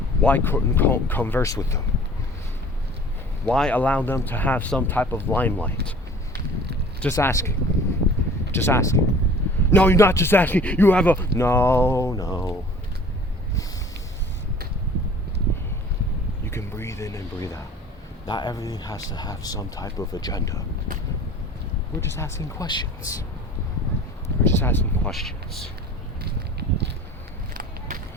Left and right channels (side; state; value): both; normal; correlation 0.47